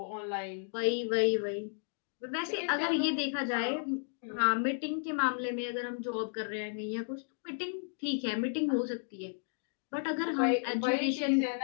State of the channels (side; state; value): right; silent; digital silence